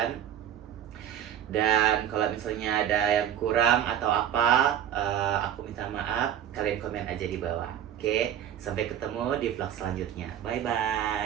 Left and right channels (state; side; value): quieter; left; 10.1 dB